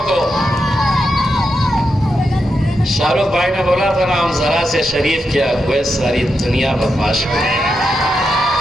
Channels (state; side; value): normal; both; correlation 0.85